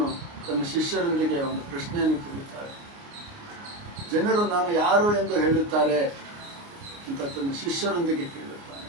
ತನ್ನ ಶಿಷ್ಯರೊಂದಿಗೆ ಒಂದು ಪ್ರಶ್ನೆಯನ್ನು ಕೇಳುತ್ತಾರೆ. ಜನರು ನಾನು ಯಾರು ಎಂದು ಹೇಳುತ್ತಾರೆ ಅಂತ ತನ್ನ ಶಿಷ್ಯರೊಂದಿಗೆ ಕೇಳುತ್ತಾನೆ.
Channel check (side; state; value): left; late; 29 ms